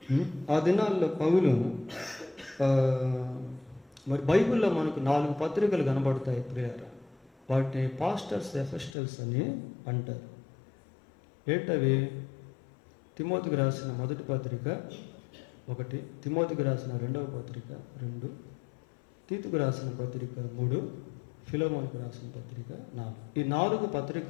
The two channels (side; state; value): right; drops out; at 9.0 s